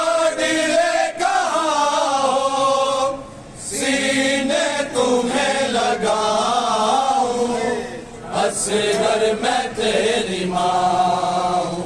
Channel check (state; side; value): identical; both; correlation 1.00